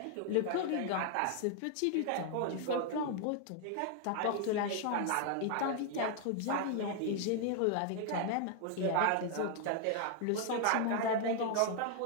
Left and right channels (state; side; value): different; both; correlation 0.00